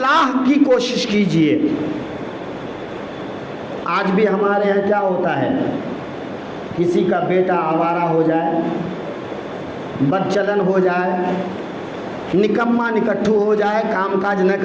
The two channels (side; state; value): both; identical; correlation 1.00